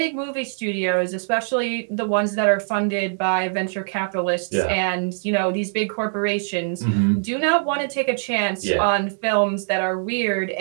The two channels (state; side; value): silent; left; 64 dB below the other